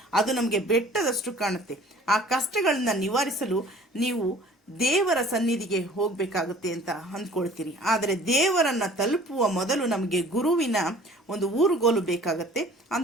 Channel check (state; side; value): normal; both; correlation 0.50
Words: ಅದು ನಮಗೆ ಬೆಟ್ಟದಷ್ಟು ಕಾಣುತ್ತೆ. ಆ ಕಷ್ಟಗಳನ್ನ ನಿವಾರಿಸಲು ನೀವು ದೇವರ ಸನ್ನಿಧಿಗೆ ಹೋಗಬೇಕಾಗುತ್ತೆ ಅಂತ ಅಂದ್ಕೊಳ್ತೀರಿ. ಆದರೆ ದೇವರನ್ನು ತಲುಪುವ ಮೊದಲು ನಮಗೆ ಗುರುವಿನ ಒಂದು ಊರುಗೋಲು ಬೇಕಾಗತ್ತೆ.